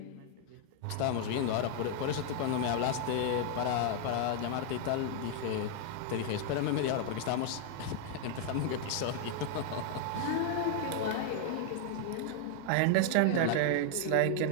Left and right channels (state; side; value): different; both; correlation 0.00